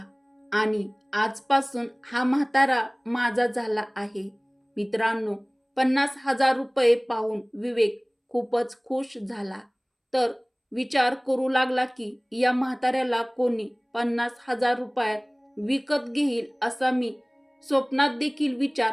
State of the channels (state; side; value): identical; both; correlation 1.00